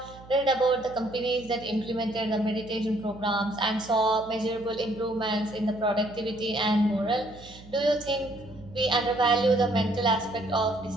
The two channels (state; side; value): noise; right; hum, 19 dB below the sound